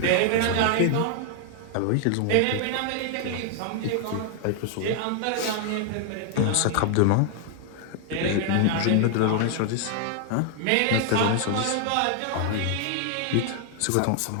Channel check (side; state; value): both; different; correlation 0.00